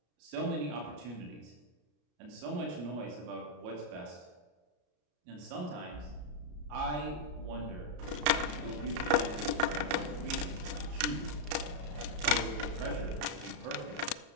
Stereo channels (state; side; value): late; left; 33 ms